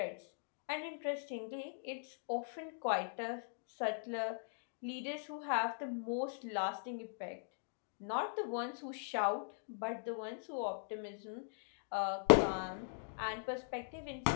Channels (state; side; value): silent; right; digital silence